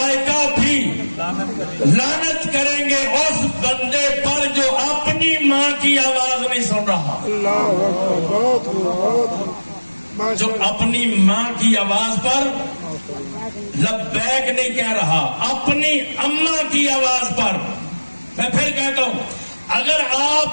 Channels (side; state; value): both; inverted; correlation -1.00